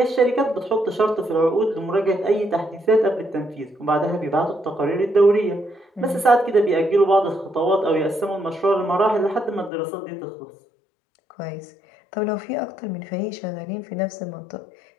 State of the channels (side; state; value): right; drops out; at 9.7 s